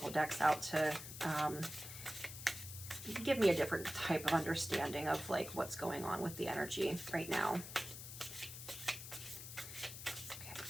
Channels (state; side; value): noise; left; hiss, 10 dB below the sound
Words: decks out to give me a different type of understanding of like what's going on with the energy right now. Okay.